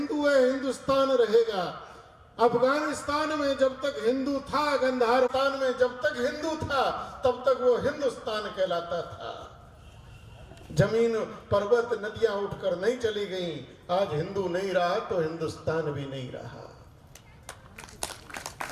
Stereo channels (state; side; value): identical; both; correlation 1.00